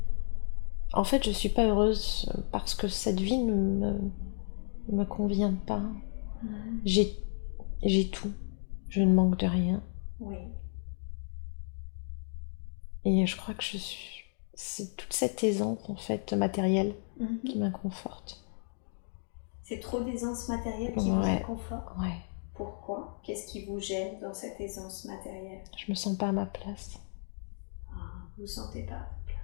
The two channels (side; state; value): right; silent; digital silence